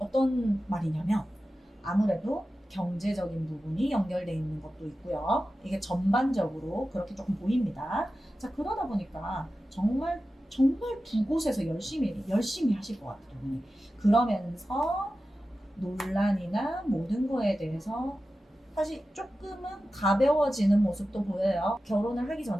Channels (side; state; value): both; normal; correlation 0.93